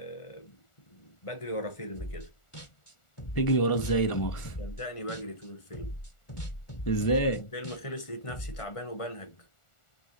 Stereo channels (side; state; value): right; late; 1.4 ms